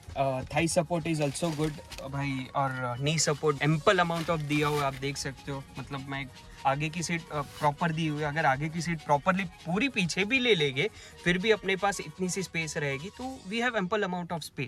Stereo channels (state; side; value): identical; both; correlation 1.00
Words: Thai support is also good भाई, और नी सपोर्ट एम्पल अमाउंट ऑफ दिया हुआ है, आप देख सकते हो। मतलब मैं आगे की सीट प्रॉपर दी हुई है। अगर आगे की सीट प्रॉपरली पूरी पीछे भी ले लेंगे, फिर भी अपने पास इतनी सी स्पेस रहेगी। तो we have ample amount of